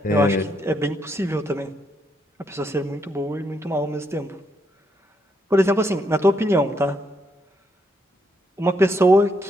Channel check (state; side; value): normal; both; correlation 0.76